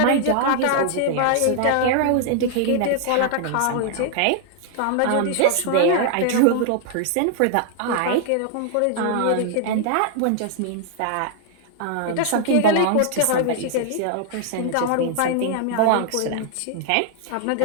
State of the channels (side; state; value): both; different; correlation 0.00